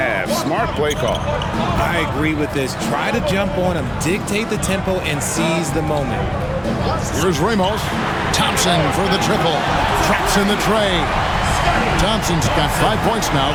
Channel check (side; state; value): both; identical; correlation 1.00